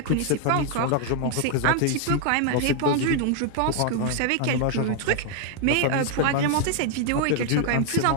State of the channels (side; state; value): both; different; correlation 0.00